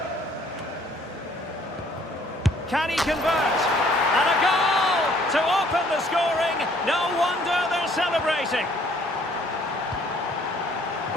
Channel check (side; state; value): both; normal; correlation 0.60